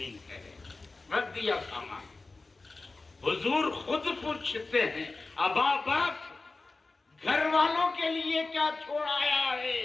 کہے، رکھ دیا سامان۔ حضور خود پوچھتے ہیں، ابا بکر گھر والوں کے لیے کیا چھوڑ آیا ہے؟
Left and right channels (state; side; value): quieter; right; 3.5 dB